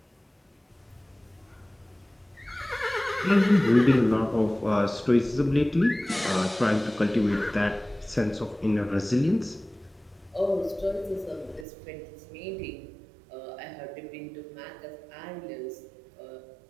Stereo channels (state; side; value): drops out; left; at 11.7 s